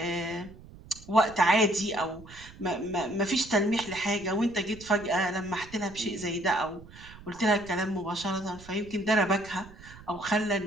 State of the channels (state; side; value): noise; right; rumble, 19 dB below the sound